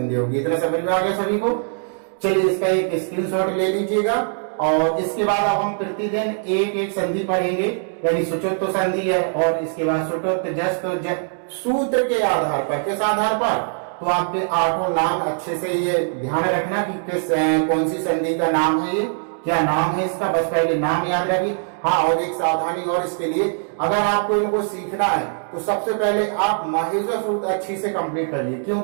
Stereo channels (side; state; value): left; silent; digital silence